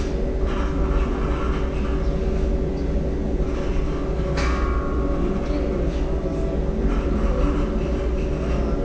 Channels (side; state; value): both; identical; correlation 1.00